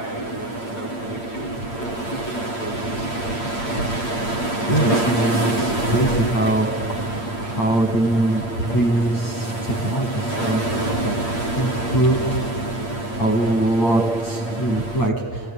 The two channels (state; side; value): late; right; 8.7 ms